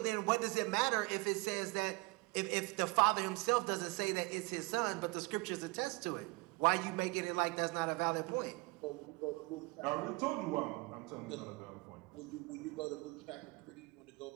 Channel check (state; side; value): quieter; left; 25.9 dB